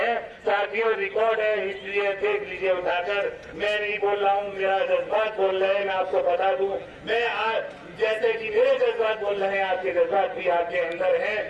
साथियों, रिकॉर्ड है, हिस्ट्री है, देख लीजिए उठाकर। मैं नहीं बोल रहा हूँ, मेरा जज्बात बोल रहे हैं। मैं आपको बता दूं, मैं आज जैसे कि मेरे जज्बात बोल रहे हैं, आपके जज्बात भी आपके अंदर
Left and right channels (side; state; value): both; identical; correlation 1.00